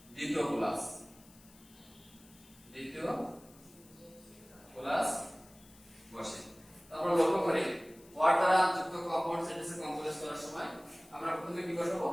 দ্বিতীয় ক্লাস বসে। তারপর লক্ষ্য করি অর দ্বারা যুক্ত কম্পাউন্ড সেন্টেন্সে কমপ্লেক্স করার সময় আমরা প্রথমে কি বসাবো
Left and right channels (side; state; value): left; noise; hiss, 25 dB below the sound